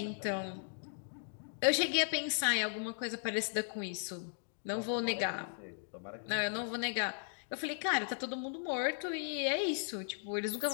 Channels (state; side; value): silent; right; digital silence